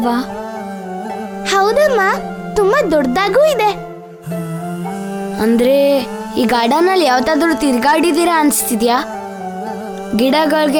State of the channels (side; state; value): both; identical; correlation 1.00